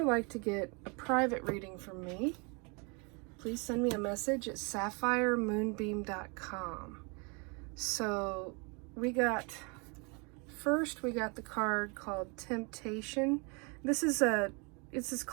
like to get a private reading from me, please send me a message at sapphiremoonbeam.com. So we got the card called Temptation. This is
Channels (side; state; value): left; quieter; 32.4 dB